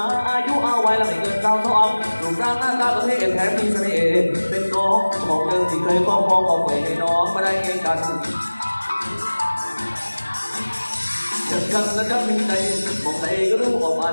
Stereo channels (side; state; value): both; inverted; correlation -1.00